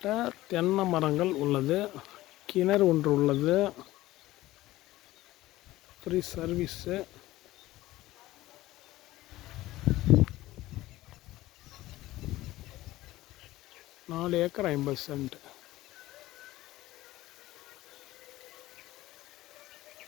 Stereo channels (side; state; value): right; quieter; 16.9 dB